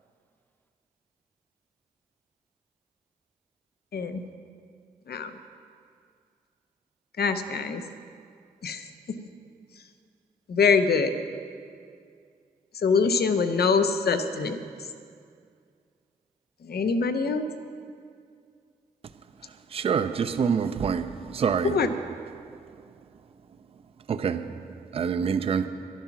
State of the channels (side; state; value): both; normal; correlation 0.49